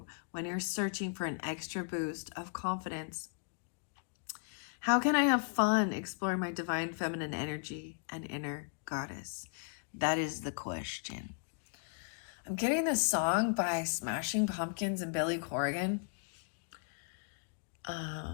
when you're searching for an extra boost of confidence. How can I have fun exploring my divine feminine energy and inner goddess? That is the question. I'm getting this song by Smashing Pumpkins and Billy Corgan.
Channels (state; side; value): silent; right; 54 dB below the other